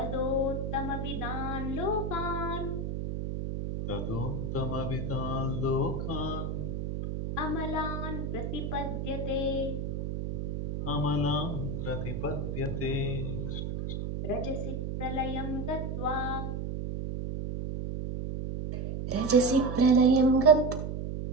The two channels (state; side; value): noise; right; hum, 3 dB below the sound